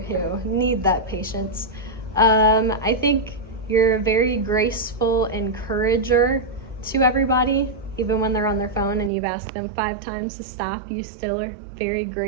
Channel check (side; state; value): left; drops out; at 9.1 s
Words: who need that patience. I think you're a very graceful encourager to everybody. Even when they're on their phone and you've asked them 5 times to stop, you still are very